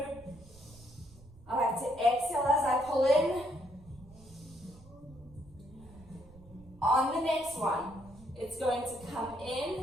I like to exhale as I pull in. On the next one, it's going to come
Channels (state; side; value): noise; right; rumble, 22 dB below the sound